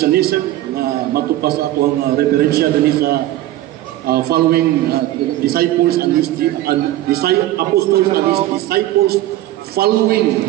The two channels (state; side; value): quieter; left; 14.9 dB